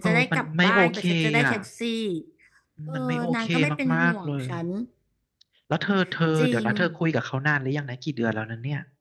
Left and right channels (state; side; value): identical; both; correlation 1.00